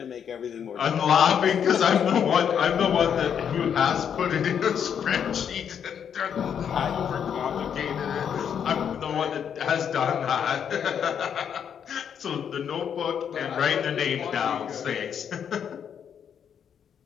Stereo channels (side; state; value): right; quieter; 8.1 dB